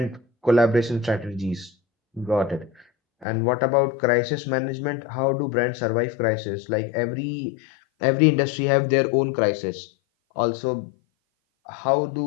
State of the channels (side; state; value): right; drops out; at 3.2 s